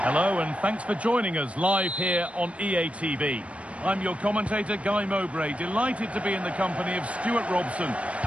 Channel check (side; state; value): left; late; 0.063 ms